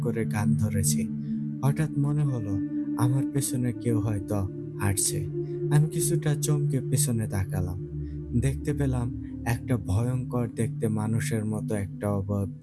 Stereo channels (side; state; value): both; identical; correlation 1.00